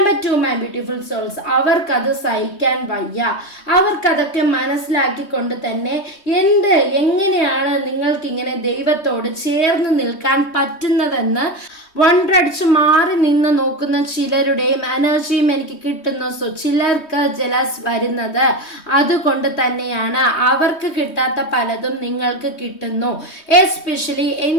2 my beautiful souls, അവർക്കത് സഹിക്കാൻ വയ്യ. അവർക്കതൊക്കെ മനസ്സിലാക്കിക്കൊണ്ട് തന്നെ എങ്ങനെയാണ് നിങ്ങൾക്കിങ്ങനെ ദൈവത്തോട് ചേർന്ന് നിൽക്കാൻ പറ്റുന്നതെന്ന് വണ്ടടിച്ച് മാറി നിന്ന് നോക്കുന്ന ചിലരുടെയും എനർജിയും എനിക്ക് കിട്ടുന്നു. സോ ചിലർക്ക് ജലസ് വരുന്നത് അതുകൊണ്ട് തന്നെയാണ്. അവർക്ക് കിട്ടാത്ത പലതും നിങ്ങൾക്ക് കിട്ടുന്നു. എസ്പെഷ്യലി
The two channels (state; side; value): late; right; 3.2 ms